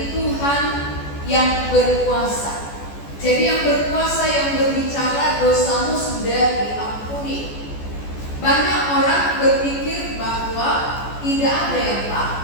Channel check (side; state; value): right; late; 14 ms